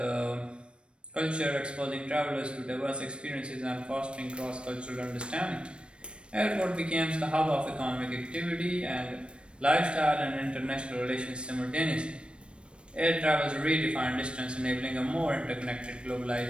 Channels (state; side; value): late; left; 0.057 ms